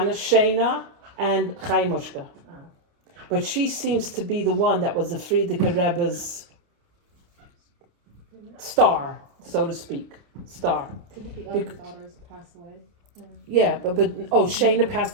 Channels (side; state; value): left; late; 29 ms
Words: and Chaya Mushka. But she seems to be the one that was the Freida Rebbe's star, so to speak. Star. Did the other daughters pass away? Yeah, but Shena